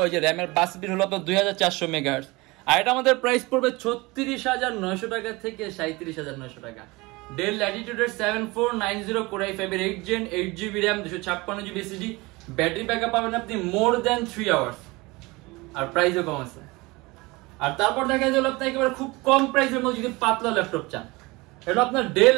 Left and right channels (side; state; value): left; quieter; 23.3 dB